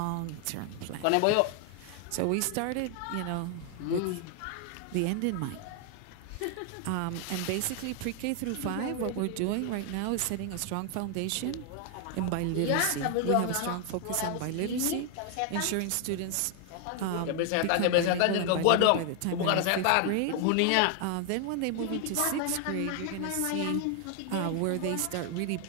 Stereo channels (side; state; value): both; different; correlation 0.00